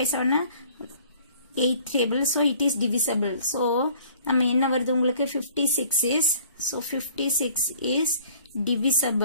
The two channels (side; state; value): both; inverted; correlation -0.54